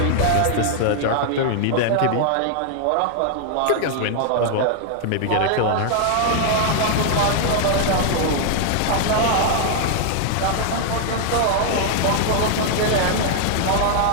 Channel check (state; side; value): different; both; correlation 0.00